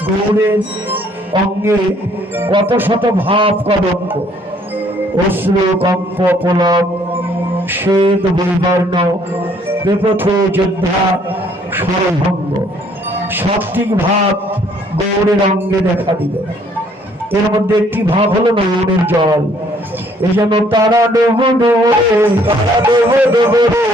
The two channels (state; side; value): normal; both; correlation 0.63